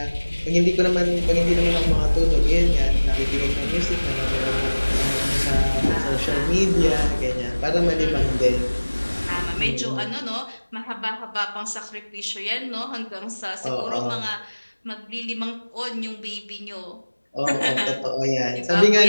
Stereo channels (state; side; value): inverted; both; correlation -1.00